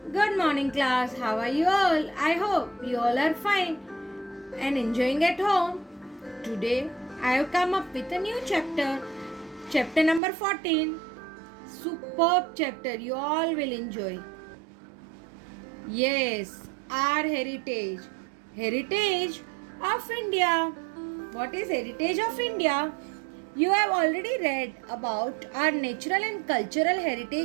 Good morning, class. How are you all? I hope you all are fine and enjoying at home. Today, I have come up with a new chapter number 14. Superb chapter, you all will enjoy. Yes, our heritage. Heritage of India. What is heritage of India? You have already read about our natural and cultural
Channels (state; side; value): drops out; left; at 10.2 s